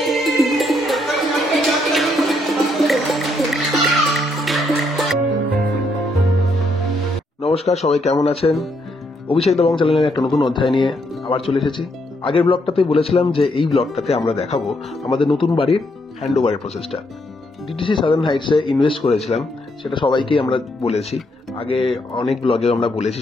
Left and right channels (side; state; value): both; normal; correlation 0.75